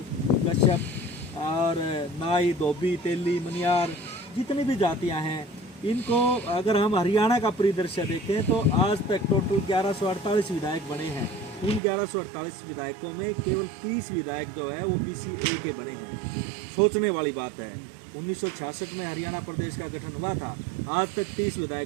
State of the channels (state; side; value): drops out; left; at 11.8 s